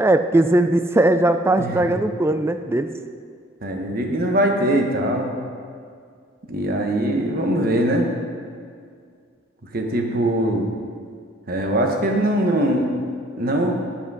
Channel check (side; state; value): both; normal; correlation 0.59